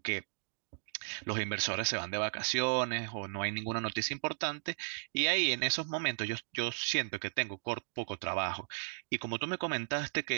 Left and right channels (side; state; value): left; silent; digital silence